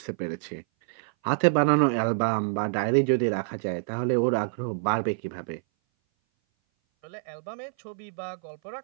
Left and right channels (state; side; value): silent; left; 58 dB below the other